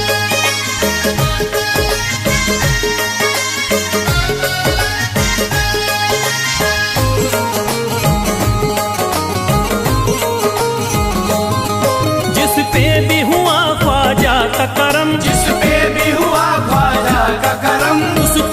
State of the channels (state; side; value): identical; both; correlation 1.00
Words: जिस पे भी हुआ ख्वाजा का करम, जिस पे भी हुआ ख्वाजा का करम,